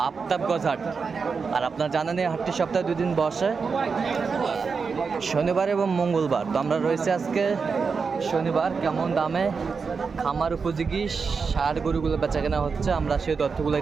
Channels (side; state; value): left; quieter; 5.2 dB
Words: আফতাবগঞ্জ হাট। আর আপনারা জানেন এই হাটটি সপ্তাহে 2 দিন বসে, শনিবার এবং মঙ্গলবার। তো আমরা রয়েছে আজকে শনিবার। কেমন দামে খামার উপযোগী ষাঁড় গরুগুলো বেচা কেনা হচ্ছে, আমরা সেই